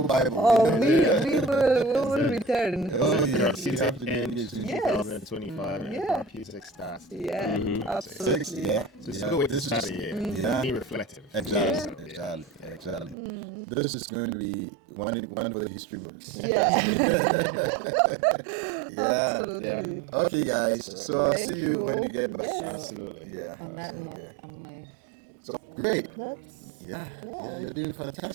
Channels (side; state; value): left; drops out; at 13.2 s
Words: Bible. We will return. Oh, yeah. In 2025, music starts. Absolutely. So it's a good way to start the year. Be reflective. Exactly. This is going to be one for the history books. Absolutely. Okay, guys. So I'll see you when you get back. Absolutely. On that note, So great. You're doing